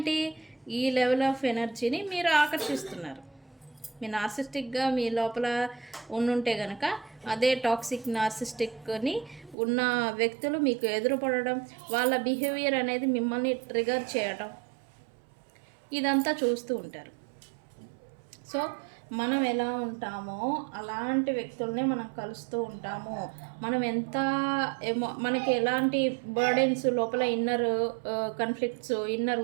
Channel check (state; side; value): drops out; left; at 9.6 s